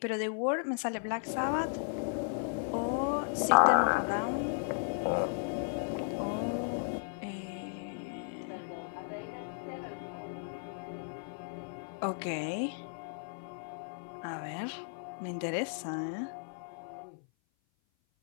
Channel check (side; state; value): right; silent; 54 dB below the other